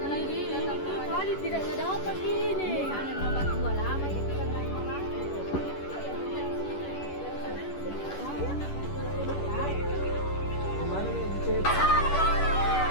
lagi datang kali tidak dapat ini. Ada nomor 2 lama itu kan lain orang. Kemana nih dicet?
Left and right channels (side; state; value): right; late; 11 ms